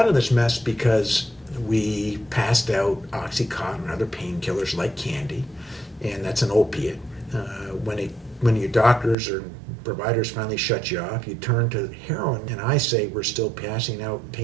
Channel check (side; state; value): left; drops out; at 9.2 s